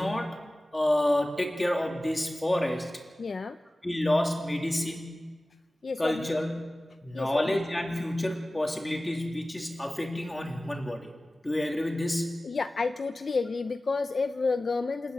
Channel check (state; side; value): normal; both; correlation 0.97